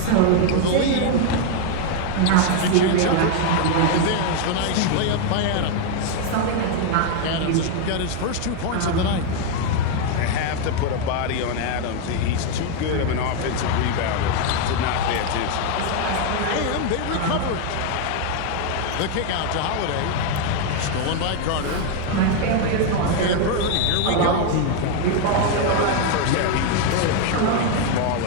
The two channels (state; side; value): different; both; correlation 0.01